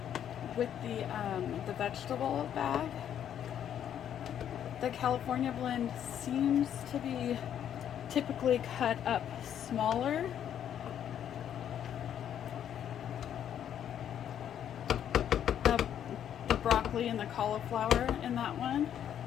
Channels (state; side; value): quieter; right; 9.8 dB